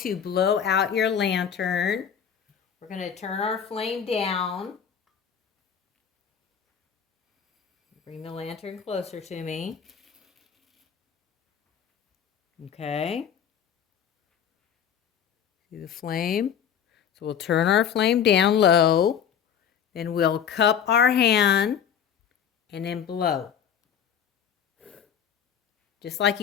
blow out your lantern. We're going to turn our flame down. Bring the lantern closer to me. Okay. See the flame? So we'll turn our flame down low. Then we'll cup our hand and then blow. Just like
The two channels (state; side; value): quieter; right; 8.2 dB